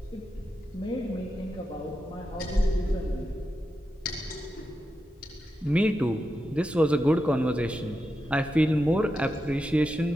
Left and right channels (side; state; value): both; normal; correlation 0.88